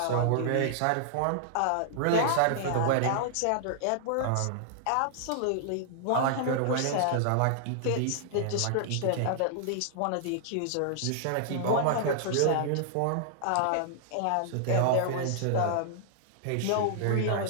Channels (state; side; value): different; both; correlation -0.01